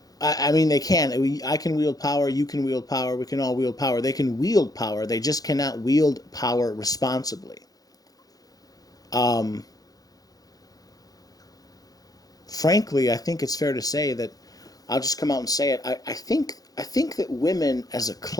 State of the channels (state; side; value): late; right; 0.18 ms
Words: I mean, they can. I can wield power. You can wield power. We can all wield power. They can wield power. They just cannot wield power responsibly. Frankly, I think it's fair to say that I'll just come out and say it. I think that women as a